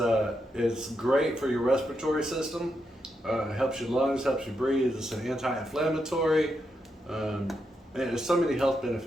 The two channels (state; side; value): normal; both; correlation 0.83